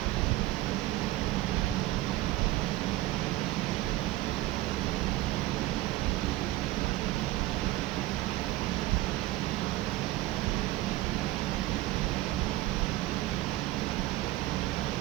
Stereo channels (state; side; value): quieter; left; 16.9 dB